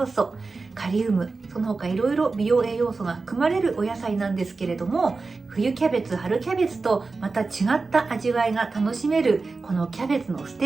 素、カリウム、その他いろいろ美容栄養素が含まれるお野菜なんですけれども、冬キャベツ、春キャベツとまた違った味わいが楽しめるこのキャベツのス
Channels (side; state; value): left; quieter; 4.0 dB